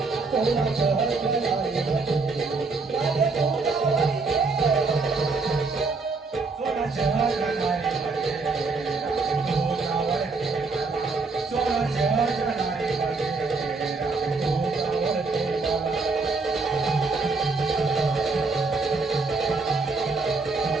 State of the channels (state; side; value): quieter; left; 4.1 dB